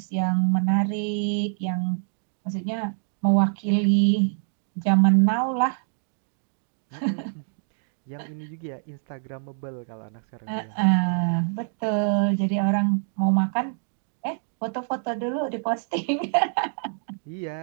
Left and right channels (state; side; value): silent; left; 61 dB below the other